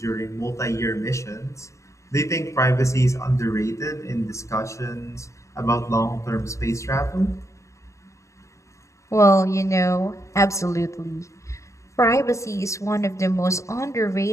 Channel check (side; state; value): right; late; 0.15 ms